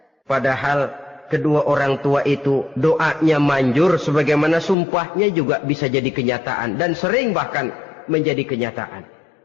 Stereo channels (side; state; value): right; drops out; at 4.8 s